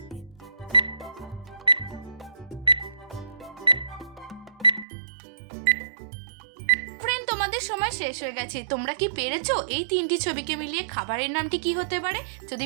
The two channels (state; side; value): drops out; left; at 4.9 s